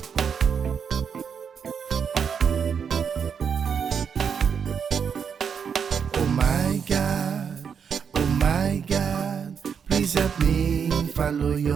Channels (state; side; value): quieter; left; 6.9 dB